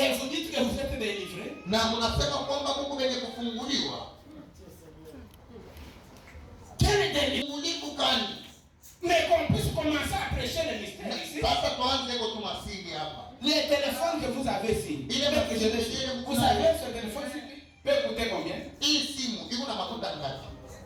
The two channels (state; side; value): identical; both; correlation 1.00